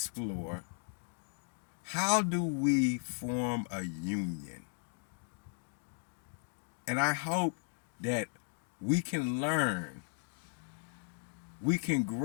how do we form a union? And I hope that we can learn, we can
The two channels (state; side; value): silent; right; digital silence